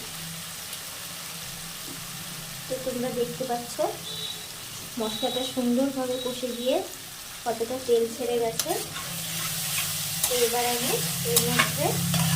তো তোমরা দেখতে পাচ্ছ মশলাটা সুন্দরভাবে কষে গিয়ে কতটা তেল ছেড়ে গেছে। তো এবার আমি এর মধ্যে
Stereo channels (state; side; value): identical; both; correlation 1.00